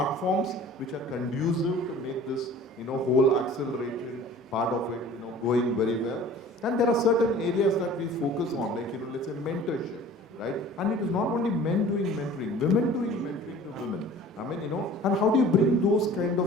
which are conducive to make this, whole acceleration part of it, going very well? And there are certain areas that we focus on, like, let's say mentorship, right? And it is not only men doing mentoring, women doing mentoring to women. And how do you bring those kind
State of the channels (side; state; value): both; normal; correlation 0.45